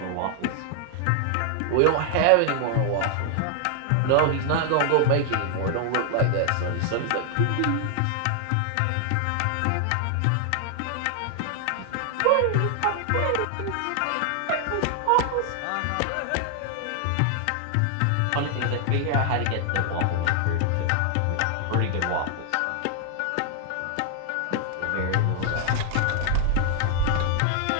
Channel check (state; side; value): different; both; correlation 0.00